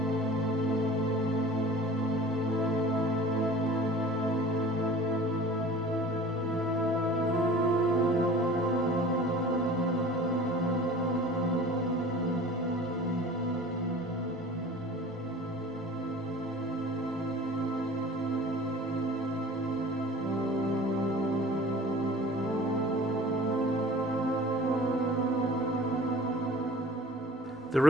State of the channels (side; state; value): both; normal; correlation 0.43